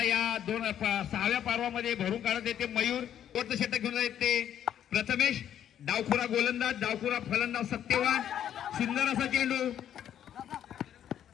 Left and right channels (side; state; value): right; quieter; 10.2 dB